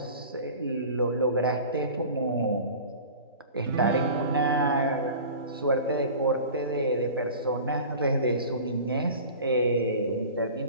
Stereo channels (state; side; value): inverted; both; correlation -0.38